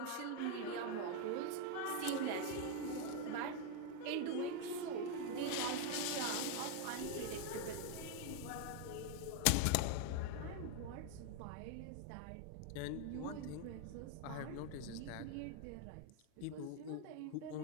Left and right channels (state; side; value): different; both; correlation 0.01